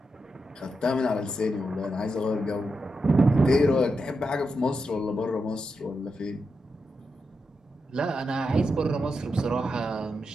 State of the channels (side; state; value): both; normal; correlation 0.86